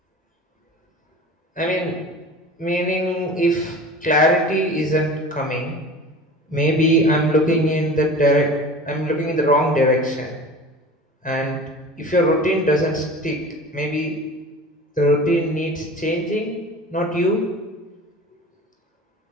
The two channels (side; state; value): both; normal; correlation 0.38